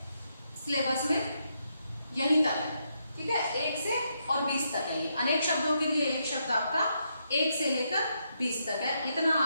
सिलेबस में यहीं तक है, ठीक है, 1 से और 20 तक है। ये अनेक शब्दों के लिए एक शब्द आपका 1 से लेकर 20 तक है। इतना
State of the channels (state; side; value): inverted; both; correlation -0.79